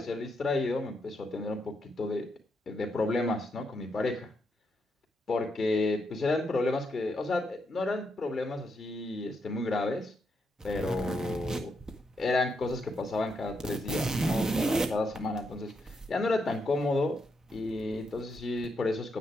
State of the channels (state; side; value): normal; both; correlation 0.80